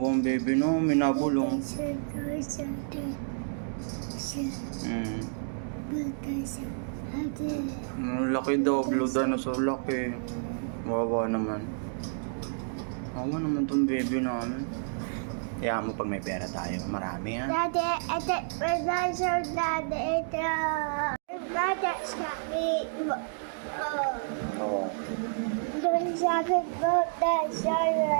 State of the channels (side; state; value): left; silent; digital silence